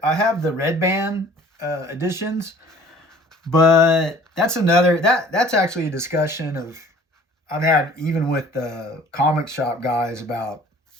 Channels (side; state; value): both; normal; correlation 0.51